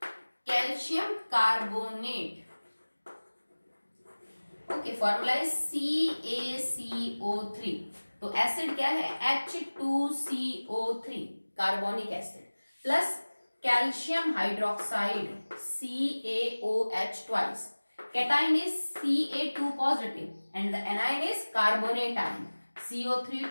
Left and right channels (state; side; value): inverted; both; correlation -1.00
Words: calcium carbonate. Okay, formula is CaCO3। तो एसिड क्या है H2CO3, carbonic acid, plus calcium hydroxide CaOH twice, cation is Ca2 positive and the anion is carbonate ion